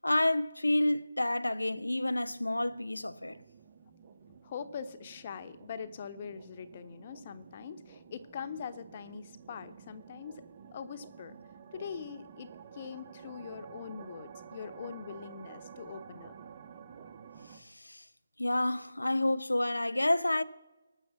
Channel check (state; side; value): inverted; both; correlation -0.96